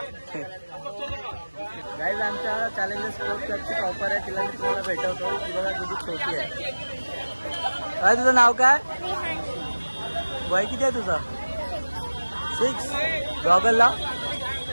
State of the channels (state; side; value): inverted; both; correlation -1.00